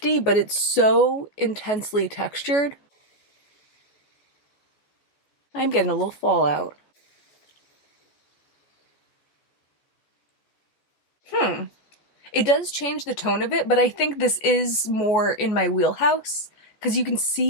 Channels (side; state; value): right; late; 14 ms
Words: but it's so intensely textured. I'm getting a little fallout. It does change the tone of it, but I think this is more in my wheelhouse because you can